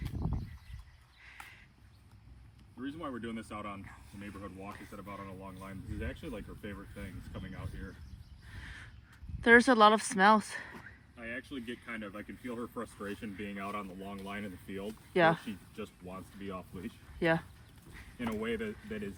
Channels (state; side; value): identical; both; correlation 1.00